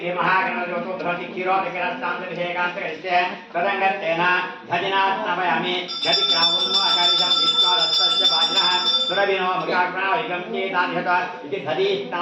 धृति क्षीरोदकरस्तान्तर्भिषेकान्तरिष्ये तदङ्गत्तेन धजिनास्तवयामि गतिग्रावन्नो अकारिशं विश्वादस्तस्य वाजिनः सुरविनो मृगाग्राविगं चेतान्यत इति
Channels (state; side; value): identical; both; correlation 1.00